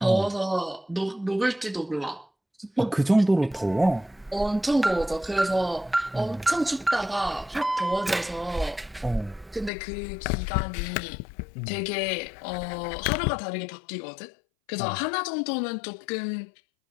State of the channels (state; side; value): drops out; right; at 9.7 s